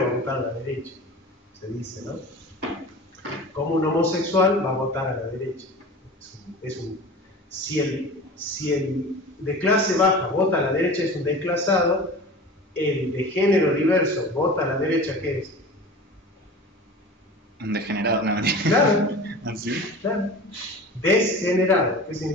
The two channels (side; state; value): both; normal; correlation 0.36